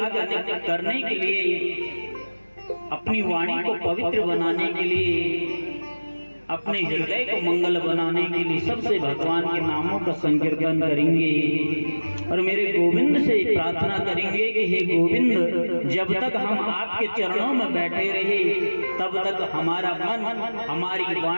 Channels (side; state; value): both; inverted; correlation -1.00